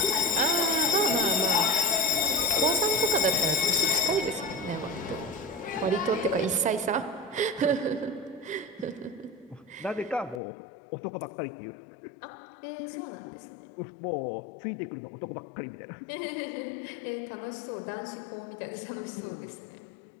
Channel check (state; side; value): drops out; right; at 10.4 s